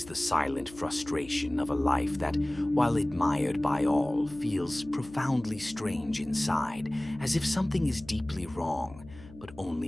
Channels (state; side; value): noise; left; hum, 19 dB below the sound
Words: the silent frustration of a life that, while admired by all, feels profoundly strange inside, as if something is deeply wrong, but only